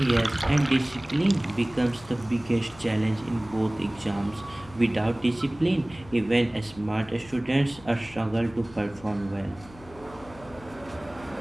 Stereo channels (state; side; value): noise; left; hum, 20 dB below the sound